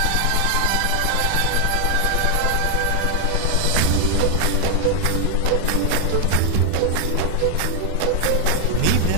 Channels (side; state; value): both; different; correlation 0.00